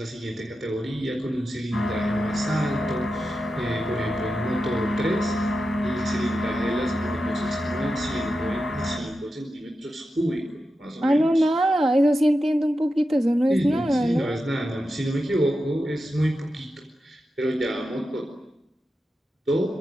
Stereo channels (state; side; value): normal; both; correlation 0.90